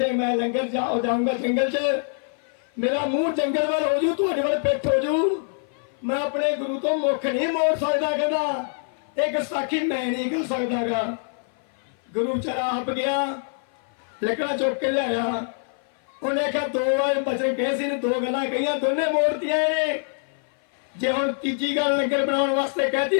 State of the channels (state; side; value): silent; right; 56 dB below the other